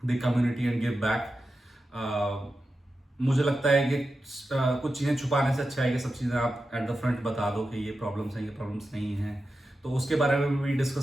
the community and give back. मुझे लगता है कि कुछ चीज़ें छुपाने से अच्छा है कि सब चीज़ें आप एट द फ्रंट बता दो कि ये प्रॉब्लम्स हैं, ये प्रॉब्लम्स नहीं हैं। तो उसके बारे में भी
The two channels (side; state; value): both; normal; correlation 0.91